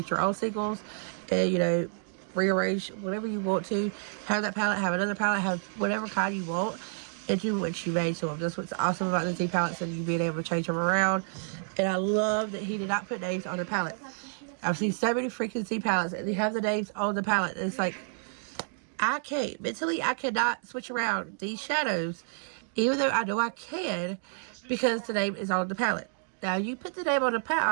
your own singles and, you know, rearrange whatever you want to. Have that palette, have another palette, have whatever kind you want, and do what you made to them. That's what's awesome about the Z palettes, and you being able to change them around. And I love that he did not put names on the palette. I've seen so many freaking Z palettes, and they have the names on the palette. And it's like, I can't. Mentally, I cannot switch around these shadows, even though I know I can, because the name is on the palette. Now, you put the name on the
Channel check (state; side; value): silent; left; digital silence